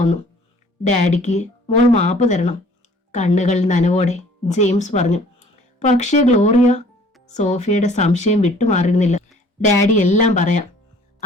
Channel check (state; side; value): normal; both; correlation 0.54